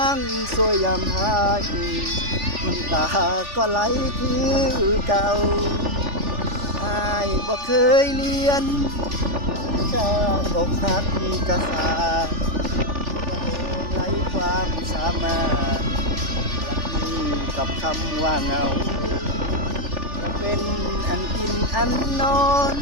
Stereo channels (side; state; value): left; late; 3.4 ms